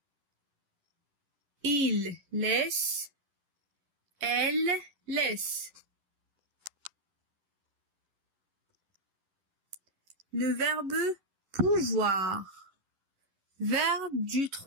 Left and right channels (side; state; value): left; late; 11 ms